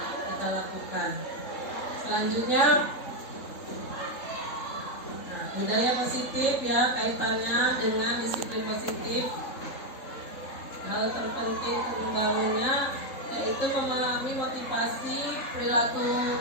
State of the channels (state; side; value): late; right; 3.7 ms